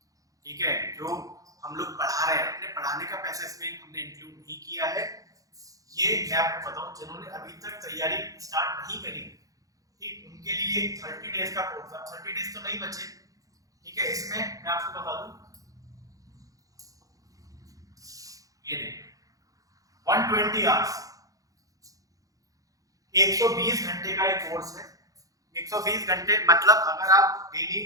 ठीक है, जो हम लोग पढ़ा रहे हैं अपने पढ़ाने का पैसा इसमें हमने इंक्लूड नहीं किया है। ये मैं आपको बताऊं, जिन्होंने अभी तक तैयारी स्टार्ट नहीं करी, ठीक, उनके लिए 30 डेज का कोर्स है। 30 डेज तो नहीं बचे। ठीक है, इसमें मैं आपको बता दूं, ये देखिए 120 आवर्स, 120 घंटे का एक कोर्स है। 120 घंटे मतलब अगर आप डेली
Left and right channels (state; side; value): late; left; 0.17 ms